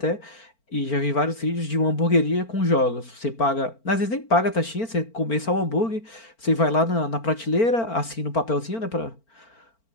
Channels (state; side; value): late; right; 4.4 ms